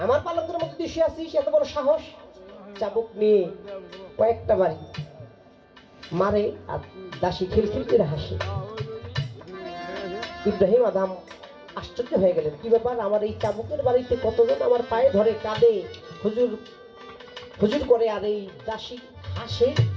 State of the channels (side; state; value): both; identical; correlation 1.00